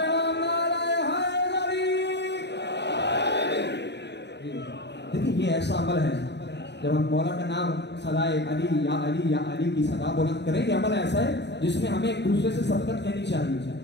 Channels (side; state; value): right; late; 0.50 ms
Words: देखिए ये ऐसा अमल है, जब हम मौला का नाम सदाए अली या अली की सदा बुलंद करें, ये अमल ऐसा है जिसमें हमें एक दूसरे से सबकत कहनी चाहिए।